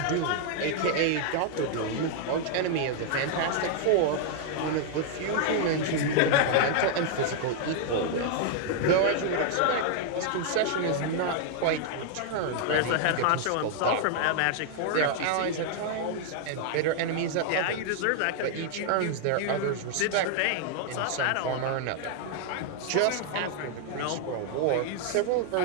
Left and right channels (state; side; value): different; both; correlation 0.00